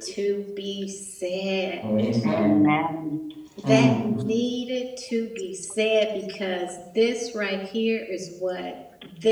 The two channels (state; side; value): identical; both; correlation 1.00